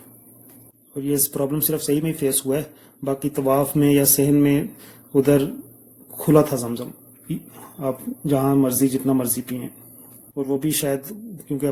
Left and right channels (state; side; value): identical; both; correlation 1.00